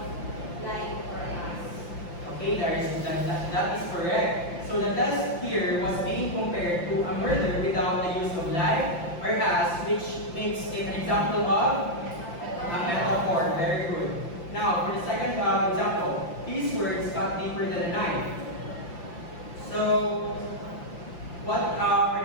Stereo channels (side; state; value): right; late; 5.8 ms